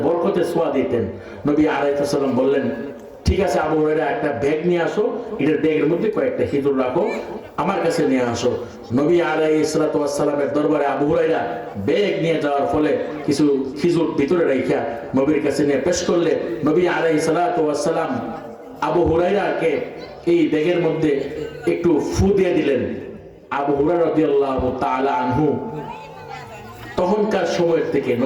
বরকতে ছোঁয়া দিতেন। নবী আলাইহিস সালাম বললেন, ঠিক আছে আবু হুরায়রা, একটা ব্যাগ নিয়ে আসো, এটার ব্যাগের মধ্যে কয়েকটা খিজুর রাখো, আমার কাছে নিয়ে আসো। নবী আলাইহিস সালামের দরবারে আবু হুরায়রা ব্যাগ নিয়ে যাওয়ার ফলে কিছু খিজুর ভিতরে রাখিয়া নবীর কাছে নিয়ে পেশ করলে নবী আলাইহিস সালাম আবু হুরায়রাকে এই ব্যাগের মধ্যে একটু ফু দিয়ে দিলেন। আবু হুরায়রা রাদিয়াল্লাহু তাআলা আনহু তখনকার সময়ের থেকে,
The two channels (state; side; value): identical; both; correlation 1.00